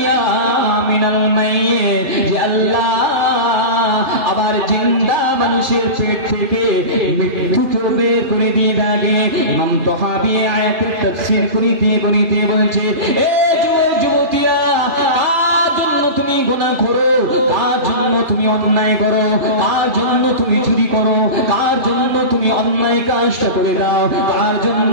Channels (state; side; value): late; left; 2.4 ms